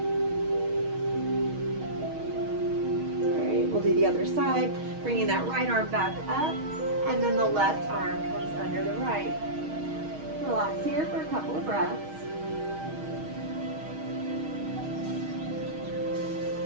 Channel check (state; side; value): late; left; 6.4 ms